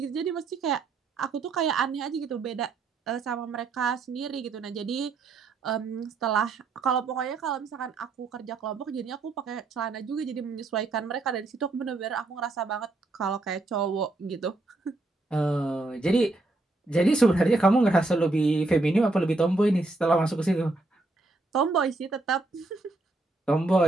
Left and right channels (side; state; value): left; quieter; 3.2 dB